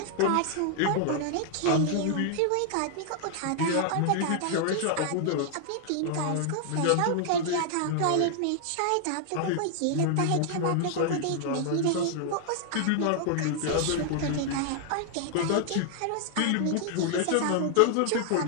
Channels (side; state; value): both; different; correlation 0.00